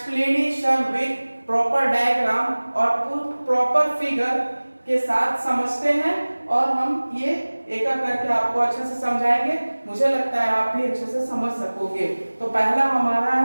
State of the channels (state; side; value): inverted; both; correlation -1.00